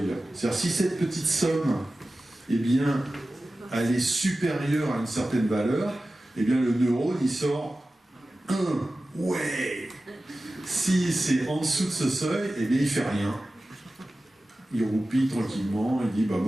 C'est-à-dire si cette petite somme, eh bien, elle est supérieure à une certaine valeur, eh bien le neurone, il sort 1. Ouais. Si c'est en dessous de ce seuil, eh bien il fait rien. Il roupille tranquillement, il dit bah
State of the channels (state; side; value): normal; both; correlation 0.95